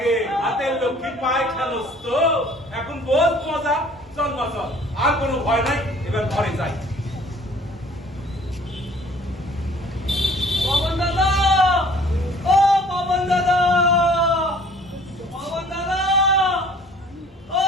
হাতের লক্ষ্মী পায় খেলোস তো এখন বহুত মজা চল মা চল আর কোনো ভয় নাই এবার ঘরে যাই পবন দাদা ও পবন দাদা ও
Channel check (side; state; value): both; normal; correlation 0.53